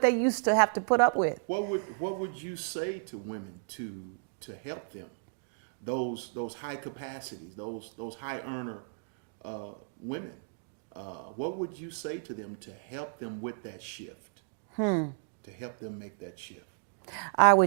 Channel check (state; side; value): silent; left; digital silence